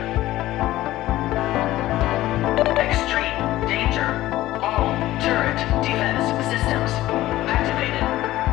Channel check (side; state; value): right; quieter; 15.7 dB